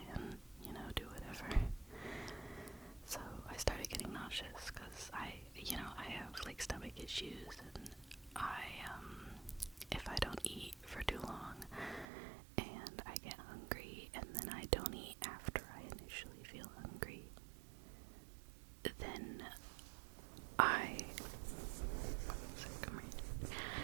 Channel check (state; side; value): drops out; left; at 12.1 s